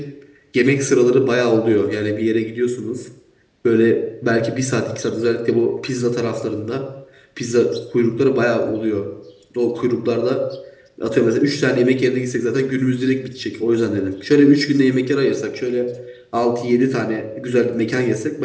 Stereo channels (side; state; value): both; identical; correlation 1.00